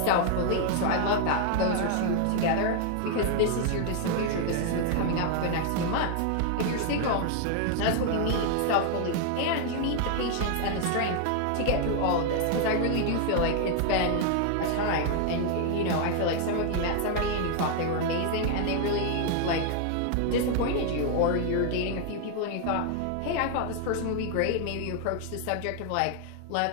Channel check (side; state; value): both; different; correlation 0.00